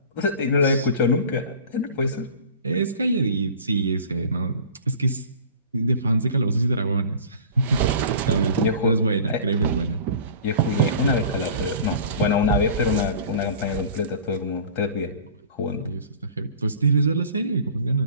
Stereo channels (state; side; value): inverted; both; correlation -0.41